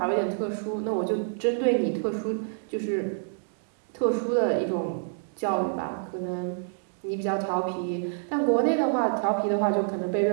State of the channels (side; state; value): left; silent; digital silence